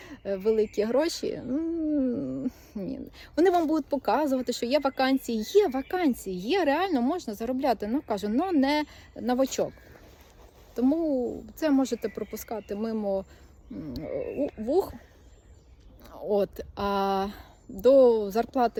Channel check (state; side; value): identical; both; correlation 1.00